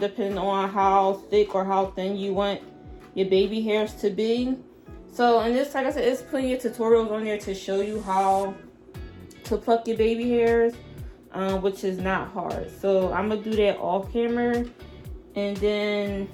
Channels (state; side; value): identical; both; correlation 1.00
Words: on how thick or how thin you want your baby hairs to be. So, and this, like I said, there's plenty of tutorials on there to show you how to pluck your baby hairs, which is not hard. So I'm gonna do that off camera, and then